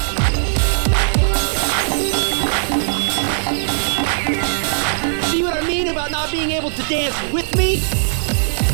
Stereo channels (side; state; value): left; silent; digital silence